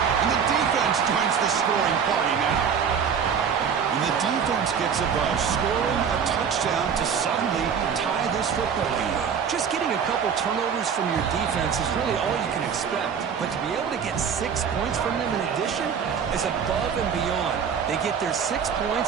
And the defense joins the scoring party now. And the defense gets above, scoring a touchdown to suddenly tie this football game. Just getting a couple turnovers from your defense is really all you can expect. But to be able to get 6 points from them in addition is above and beyond. They get their 6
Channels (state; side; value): quieter; left; 7.1 dB